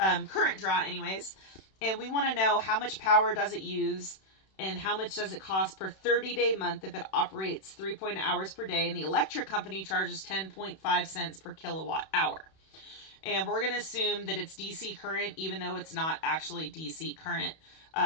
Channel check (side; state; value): right; late; 31 ms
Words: draw anyways. And we want to know how much power does it use and how much does it cost per 30-day month if it operates 3.0 hours per day, and the electric company charges 10.5 cents per kilowatt hour. And we're going to assume that it's DC current, even though it's not actually DC current,